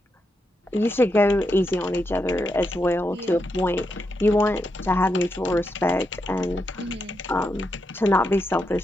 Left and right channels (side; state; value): both; normal; correlation 0.84